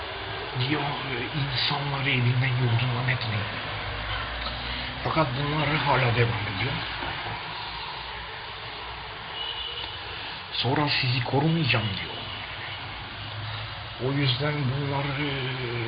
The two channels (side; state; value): both; identical; correlation 1.00